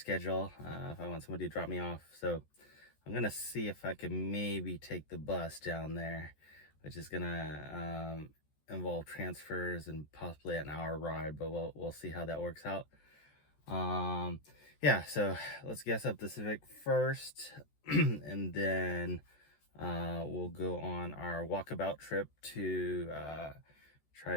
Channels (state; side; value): late; right; 14 ms